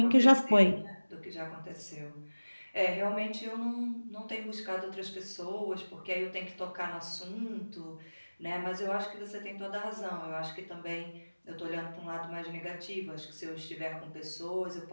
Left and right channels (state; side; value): inverted; both; correlation -1.00